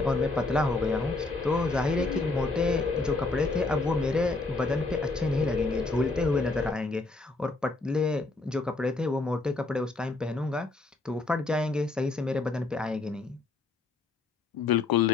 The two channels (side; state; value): right; quieter; 3.4 dB